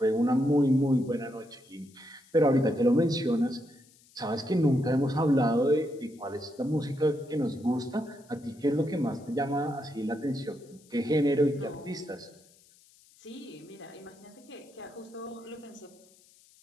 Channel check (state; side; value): noise; left; hiss, 28 dB below the sound